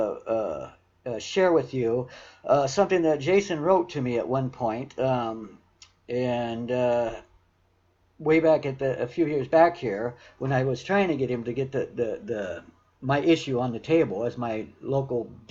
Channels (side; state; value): both; identical; correlation 1.00